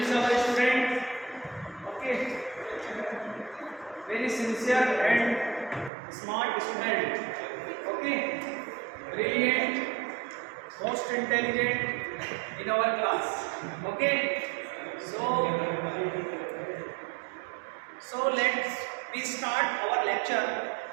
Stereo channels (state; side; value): drops out; left; at 5.9 s